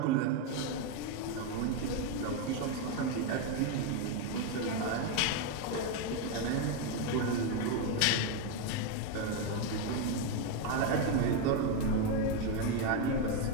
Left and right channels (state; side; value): different; both; correlation 0.02